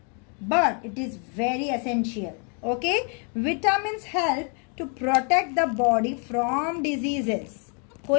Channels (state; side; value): quieter; right; 38.9 dB